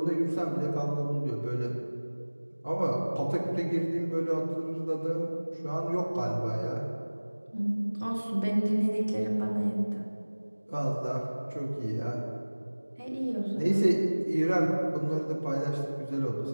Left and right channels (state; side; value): inverted; both; correlation -1.00